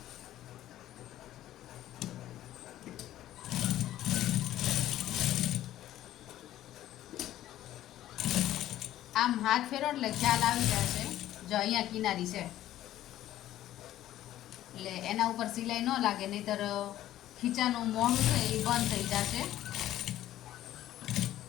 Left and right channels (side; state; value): right; quieter; 13.4 dB